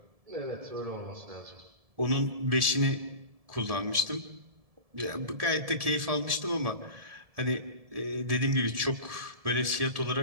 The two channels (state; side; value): late; left; 1.7 ms